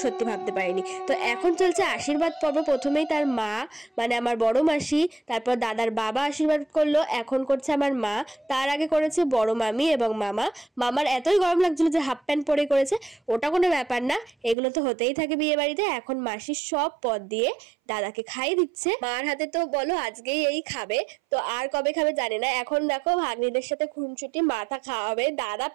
সত্যি ভাবতে পারিনি। তো এখন চলছে আশীর্বাদ পর্ব। প্রথমেই তার মা, মানে আমার বড় মাসি, তারপর দাদার বাবা আশীর্বাদ করলো, এখন করছে আমার মা, তার আগে করেছে বড় মামি এবং মামা। মামার এতই গরম লাগছিল যে হাফ প্যান্ট পরে করেছে, ওটা কোনো ব্যাপার না, এগুলো তো হতেই থাকে বিয়ে বাড়িতে। এখন মাসি সব পদ দিয়ে দাদাকে খাইয়ে দিচ্ছে। মার হাতে তো বলো আজকেই এই খাবে, তো আর কবে খাবে জানি না। এখন দেখো ভাগ্নিদের সাথে খুনছুটি, মাথা খাওয়াবে, দাদা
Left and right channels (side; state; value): left; drops out; at 14.6 s